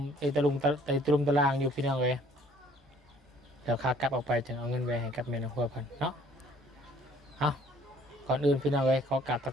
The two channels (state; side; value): normal; both; correlation 0.58